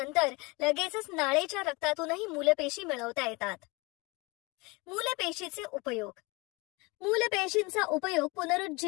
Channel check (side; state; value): right; quieter; 25.8 dB